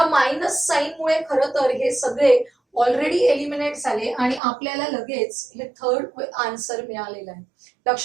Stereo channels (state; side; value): drops out; left; at 4.4 s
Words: मायनस साइन मुळे खरं तर हे सगळे ऑलरेडी एलिमिनेट झाले आणि आपल्याला लगेच हे थर्ड आन्सर मिळालेलं आहे.